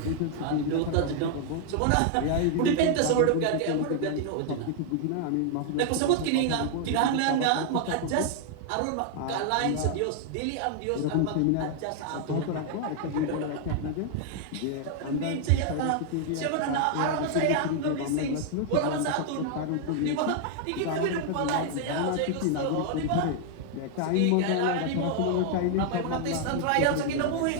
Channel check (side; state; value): both; different; correlation 0.00